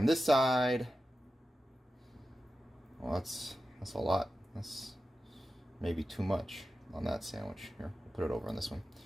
this side. Well, that's a lot. That's maybe too much on that sandwich. Here, we'll put it over on this one.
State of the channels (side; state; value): both; normal; correlation 0.92